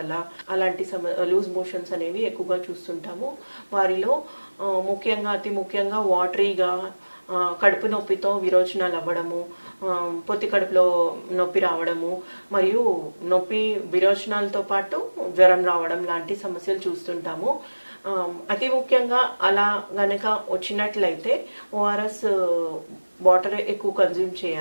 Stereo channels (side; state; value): both; inverted; correlation -1.00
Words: అలాంటి లూజ్ మోషన్స్ అనేవి ఎక్కువగా చూస్తుంటాము. వారిలో అతి ముఖ్యంగా వాటరీగా కడుపు నొప్పితో విరోచనాలు అవ్వడము, పొత్తి కడుపులో నొప్పి రావడము, మరియు విరోచనాలతో పాటు జ్వరం రావడం లాంటి సమస్యలు చూస్తుంటాము. అతి ముఖ్యంగా అలా గనక వచ్చినట్లయితే ఓఆర్ఎస్ వాటర్ ఎక్కువ కన్జ్యూమ్